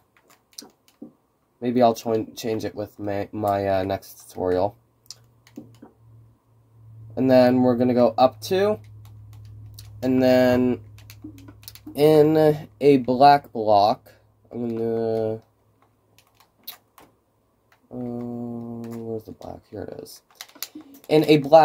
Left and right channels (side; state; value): both; identical; correlation 1.00